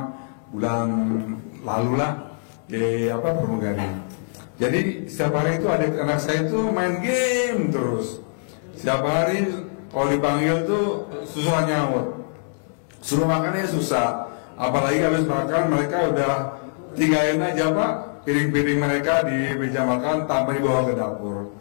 bulan lalu lah di pramugari. Jadi setiap hari itu anak saya itu main game terus. Setiap hari kalau dipanggil tuh susah nyaut, suruh makannya susah. apalagi habis makan mereka udah tinggalin aja Pak piring-piring mereka di meja makan tanpa dibawa ke dapur.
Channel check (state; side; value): silent; right; digital silence